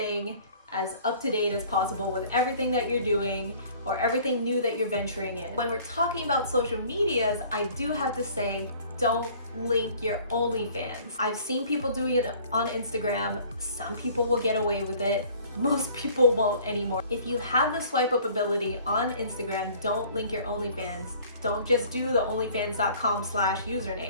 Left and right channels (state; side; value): inverted; both; correlation -0.52